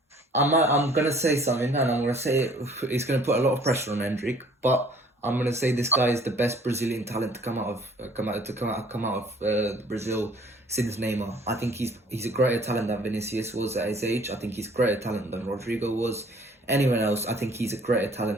I'm going to say something, and I'm going to say it's going to put a lot of pressure on Endrick, but I'm going to say this guy is the best Brazilian talent to come out of Brazil since Neymar. I think he's a greater talent than Vinicius was at his age. I think he's greater talent than Rodrigo was. Anyone else, I think he's a greater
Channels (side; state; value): both; normal; correlation 0.56